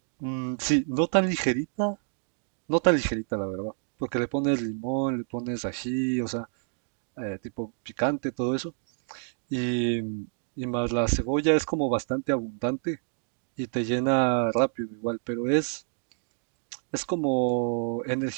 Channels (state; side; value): silent; left; 59 dB below the other